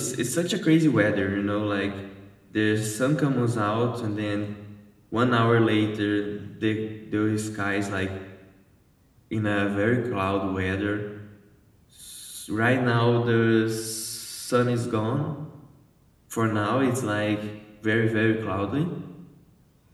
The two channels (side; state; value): both; identical; correlation 1.00